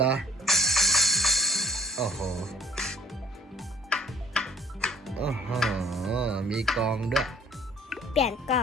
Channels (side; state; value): both; normal; correlation 0.55